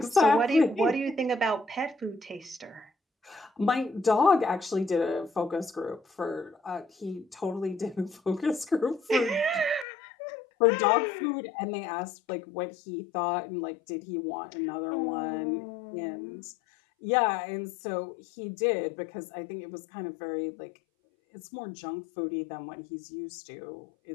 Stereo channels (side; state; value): right; drops out; at 9.9 s